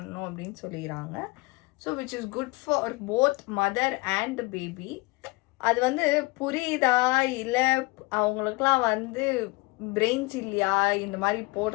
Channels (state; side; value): quieter; right; 25.2 dB